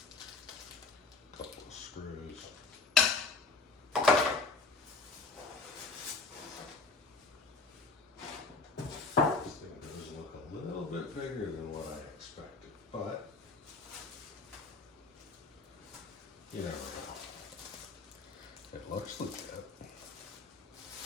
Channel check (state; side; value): quieter; right; 4.0 dB